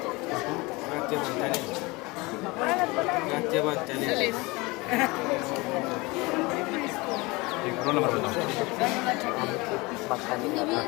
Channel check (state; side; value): quieter; right; 24.0 dB